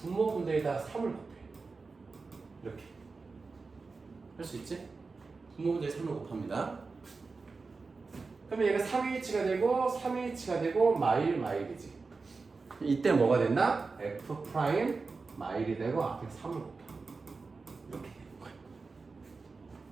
3을 곱해. 이렇게 할 수 있지? 분모분대에 3을 곱합니다. 그러면 얘가 3H가 되고 3H가 되고 마일이지. 이때 뭐가 된다? F 프라임 마일이 되고 앞에 3을 곱해. 이렇게 되는 거야.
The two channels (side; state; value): left; quieter; 4.2 dB